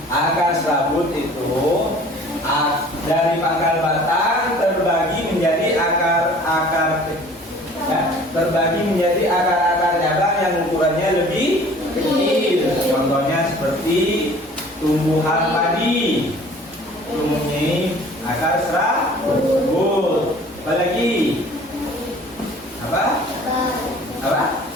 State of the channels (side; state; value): both; normal; correlation 0.49